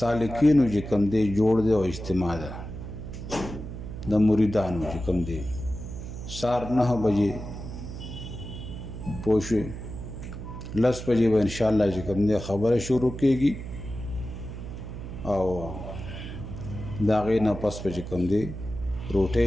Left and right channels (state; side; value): noise; right; hum, 9 dB below the sound